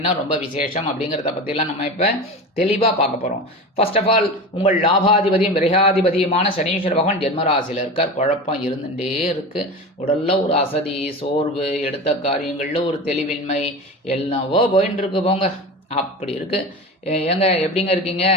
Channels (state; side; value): normal; both; correlation 0.29